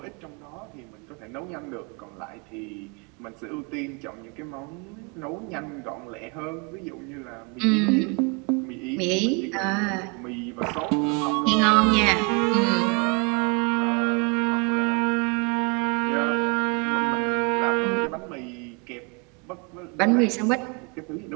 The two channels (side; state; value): left; quieter; 32.6 dB